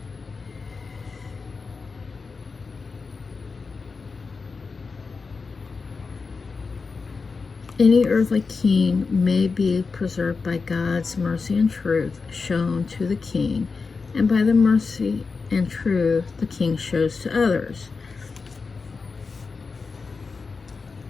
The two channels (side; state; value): right; quieter; 4.6 dB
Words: Any earthly king may be preserved by God's mercy and truth shown to the king, and by the mercy and truth the king shows to others.